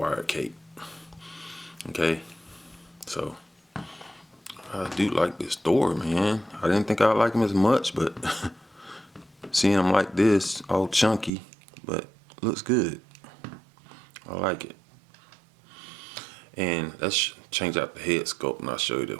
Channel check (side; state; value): left; drops out; at 11.3 s